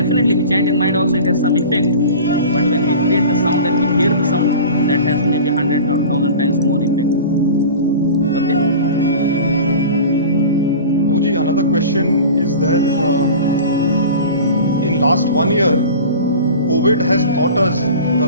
we chant in mind also, it has some effect, but when we create the sound and we hear the sound, that has maybe 100 or 1000 times more effect. Okay? Guruji, another question is that in last 1 year, COVID has taught us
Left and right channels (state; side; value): inverted; both; correlation -0.37